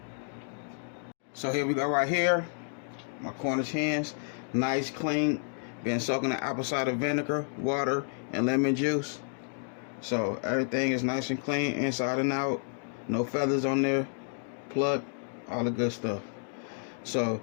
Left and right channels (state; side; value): silent; right; 57 dB below the other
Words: So here we go right here, my Cornish hens, nice, clean, been soaking in apple cider vinegar, water, and lemon juice. So everything is nice and clean inside and out, no feathers on there, plucked, all the good stuff. So